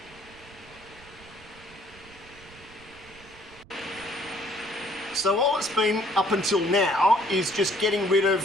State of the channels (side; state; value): right; noise; rumble, 22 dB below the sound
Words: So all it's been up until now is just getting rid of